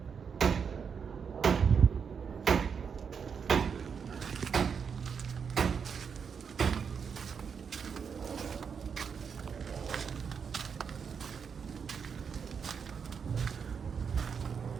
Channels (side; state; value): left; quieter; 6.5 dB